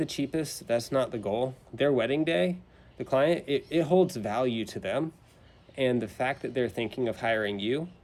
cheapest. That's not the goal. Their wedding day, the client, it holds value to them. And the fact that they're thinking of hiring you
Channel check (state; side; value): identical; both; correlation 1.00